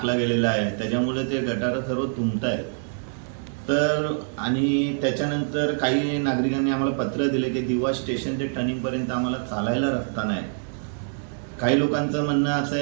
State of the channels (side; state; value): left; silent; digital silence